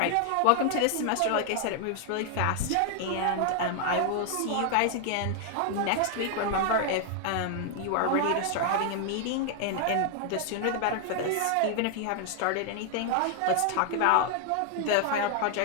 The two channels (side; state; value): both; different; correlation 0.00